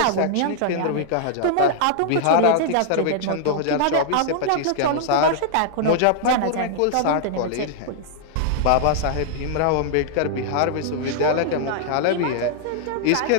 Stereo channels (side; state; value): both; different; correlation -0.01